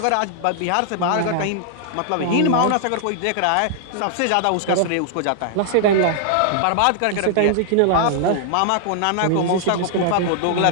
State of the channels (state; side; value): different; both; correlation -0.01